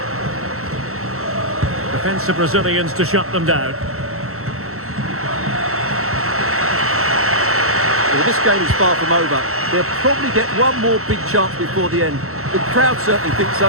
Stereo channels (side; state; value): left; late; 0.63 ms